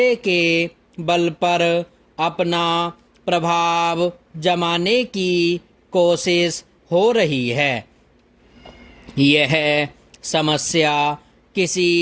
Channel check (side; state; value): both; identical; correlation 1.00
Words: के बल पर अपना प्रभाव जमाने की कोशिश हो रही है। यह समस्या